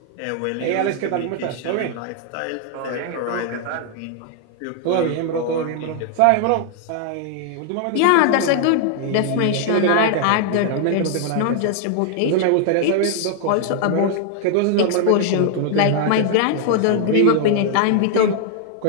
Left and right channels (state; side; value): different; both; correlation 0.00